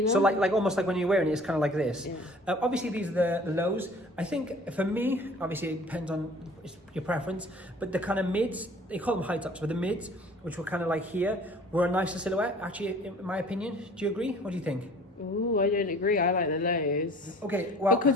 So like almost like when you're wearing it, it's kind of like this. Yeah. Obviously, these are the lows. I think for me, obviously it depends on your preference, but the kind of mids, they call them high tops, but the mids, which were kind of like here, were a nicer silhouette, actually, in my opinion. Do you agree? What do you think? Ooh, I don't agree. I like the lows. Okay, well,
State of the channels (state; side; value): normal; both; correlation 0.49